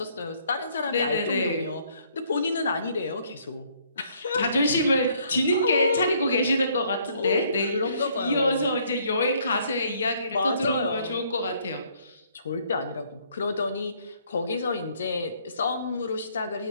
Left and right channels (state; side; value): inverted; both; correlation -0.65